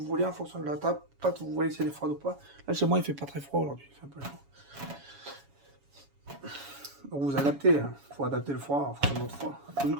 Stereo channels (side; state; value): left; late; 7.2 ms